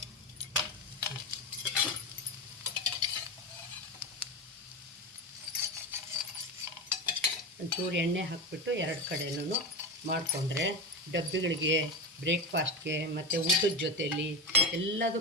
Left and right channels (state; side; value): normal; both; correlation 0.20